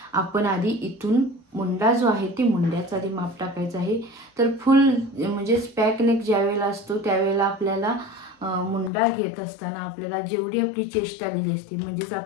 आपण आधी इथून मुंडा जो आहे ते मुंड्याचा आधी माप टाकायचं आहे. तर फुल म्हणजेच पॅक नेक ज्यावेळेला असतो त्यावेळेला आपल्याला मुंडा घेत असताना आपल्याला जेवढी आपली चेस्ट आलेली असते, म्हणजेच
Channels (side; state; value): right; drops out; at 8.9 s